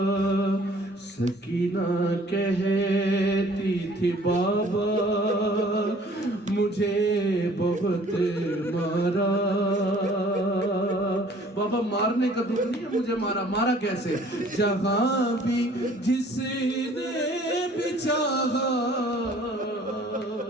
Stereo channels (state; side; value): normal; both; correlation 0.54